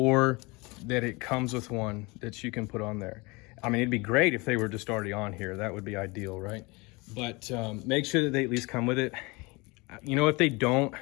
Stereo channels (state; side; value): quieter; right; 25.7 dB